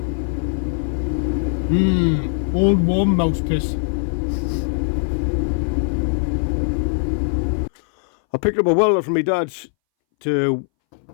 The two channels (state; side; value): silent; right; 63 dB below the other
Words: Old warm mouse piss. I picked up a welder from my dad's to,